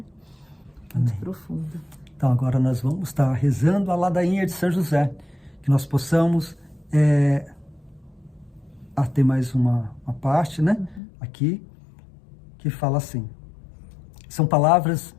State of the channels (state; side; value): drops out; right; at 11.0 s